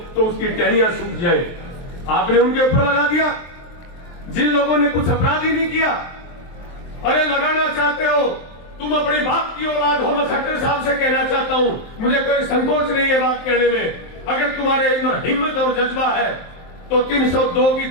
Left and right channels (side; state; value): right; late; 23 ms